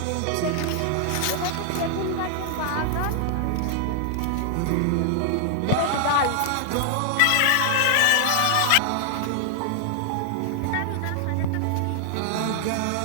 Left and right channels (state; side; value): different; both; correlation 0.00